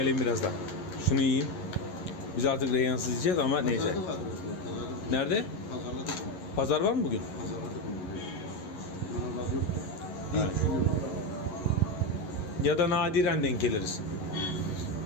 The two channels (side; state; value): right; late; 11 ms